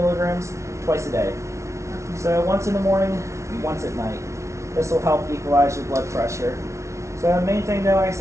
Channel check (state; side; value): late; left; 0.14 ms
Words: twice a day. So once in the morning, once at night. This will help equalize your blood pressure. So the main thing, though, like I